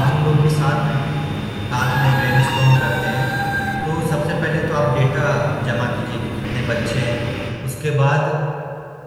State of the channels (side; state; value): both; identical; correlation 1.00